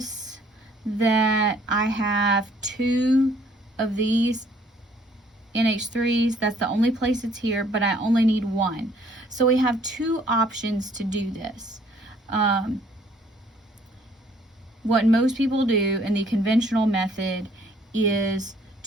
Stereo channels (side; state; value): both; normal; correlation 0.61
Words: that I have 2 of these NH3s. That's the only place it's here, but I only need 1. So we have 2 options to do this. What most people do in the conventional method is